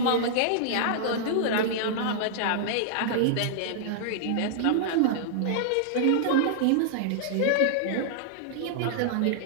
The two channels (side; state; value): both; different; correlation -0.01